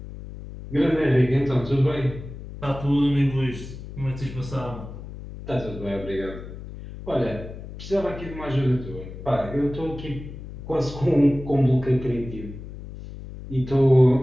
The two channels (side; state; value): left; noise; hum, 12 dB below the sound